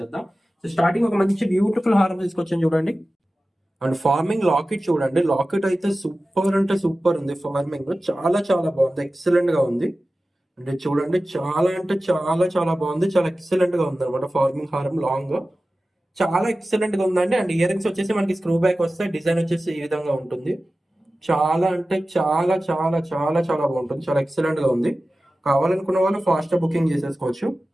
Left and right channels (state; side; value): normal; both; correlation 0.95